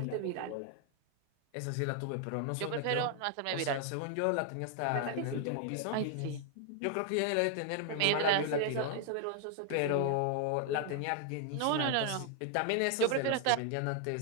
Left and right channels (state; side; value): different; both; correlation 0.00